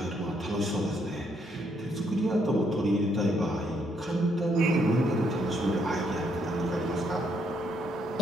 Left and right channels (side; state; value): both; normal; correlation 0.72